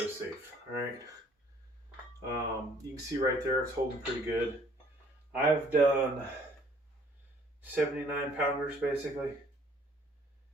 All right, you can see right there it's holding pretty good. I've done 79 pounders basically,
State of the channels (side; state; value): both; normal; correlation 0.59